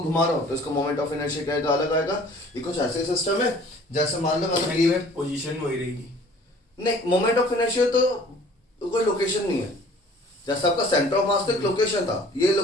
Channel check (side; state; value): both; normal; correlation 0.51